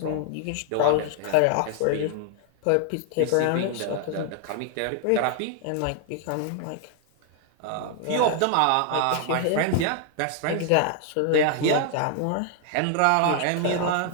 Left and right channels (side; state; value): both; different; correlation 0.00